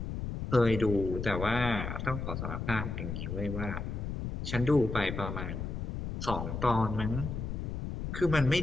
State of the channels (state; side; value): noise; left; rumble, 4 dB below the sound